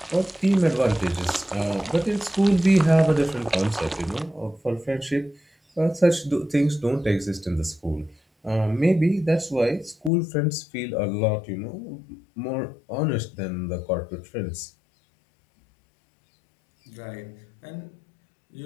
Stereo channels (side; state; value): right; drops out; at 10.1 s